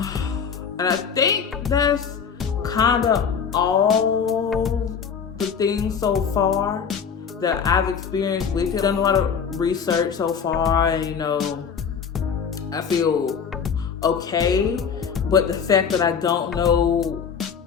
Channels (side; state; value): right; quieter; 6.7 dB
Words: I think that's kind of all the things so far that I've experienced with it. I've done a lot of research so far, and I feel okay. But the fact that I don't know